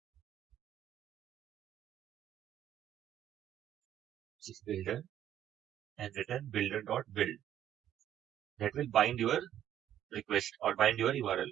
which is builder, and return builder.build. That will bind your request or bind your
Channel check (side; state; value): left; quieter; 11.0 dB